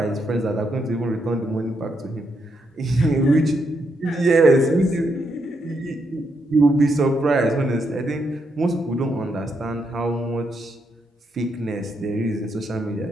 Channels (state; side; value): normal; both; correlation 0.79